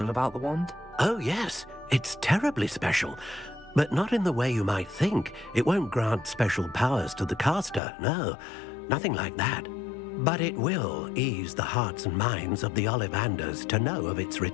about the wand? Oh, yes. It's terribly special. But not in the way you might think. It won't grant special powers to the caster, no. Nothing like that. But it will ease the hearts and minds of the Ollivanders to know of its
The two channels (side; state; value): right; drops out; at 7.8 s